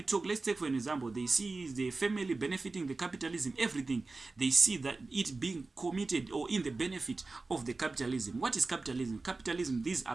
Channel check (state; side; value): quieter; left; 3.6 dB